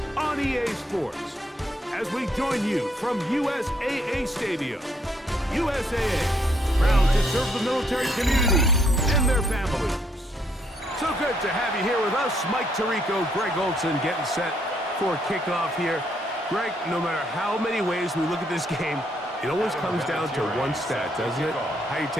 on EA Sports. As we join you from USAA Stadium, USAA, proud to serve the military community and their families. So good to have you here with us. Mike Tirico, Greg Olson getting set for kickoff here. Greg, no matter how many ways we look at this game, it always comes down to one stat, doesn't it? How you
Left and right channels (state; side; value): normal; both; correlation 0.71